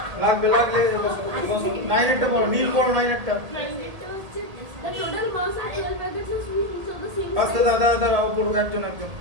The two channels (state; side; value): late; left; 1.8 ms